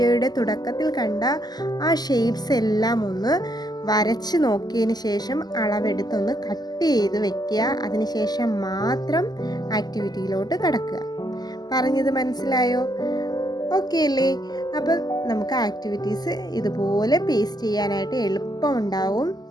തുടക്കത്തിൽ കണ്ട ആ ഷേപ്സ് എല്ലാം ഒന്ന് വരച്ച് നോക്കിയതിന് ശേഷം അളവെടുത്തൊന്ന് കട്ട് ചെയ്ത് വെക്കുക. അതിനുശേഷം മാത്രം ആക്ടിവിറ്റിയിലോട്ട് കടക്കുക. പറഞ്ഞത് മനസ്സിലായോ? ഓക്കെ അല്ലേ? അപ്പം നമുക്ക് ആക്ടിവിറ്റീസ് ഇതുപോലെ പേസ്റ്റ് ചെയ്യാനായിട്ട് എളുപ്പമുണ്ടാവും.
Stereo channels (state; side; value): late; right; 0.20 ms